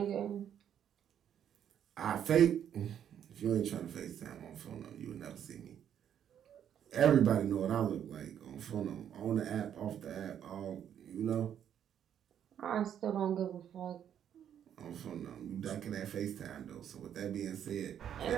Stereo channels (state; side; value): quieter; left; 9.4 dB